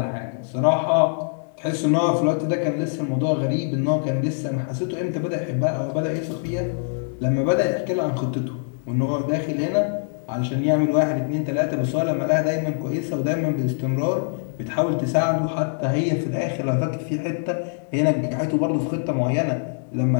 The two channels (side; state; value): right; silent; digital silence